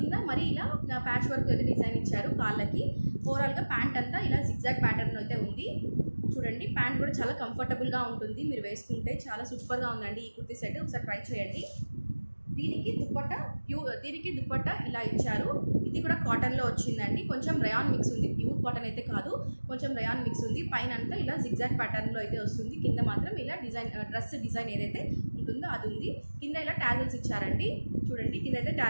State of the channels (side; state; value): both; inverted; correlation -1.00